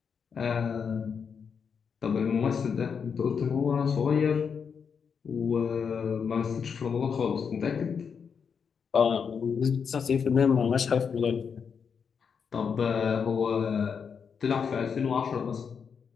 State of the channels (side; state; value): right; quieter; 6.4 dB